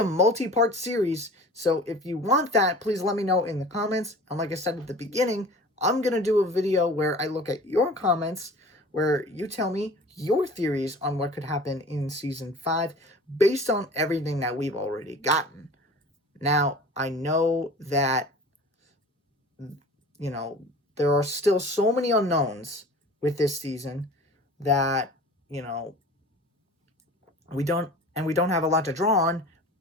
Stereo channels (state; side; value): normal; both; correlation 0.41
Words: multi-part series, so if you want that, please let me know in the comments. And like I said at the beginning, I'm going to do a video where I look at your comments, where you tell me your theories on what could happen in Season 5 based on everything that we've already gotten. Now, I know that, you know, there are still so many unknowns with this season that, you know, we don't have a lot to draw on,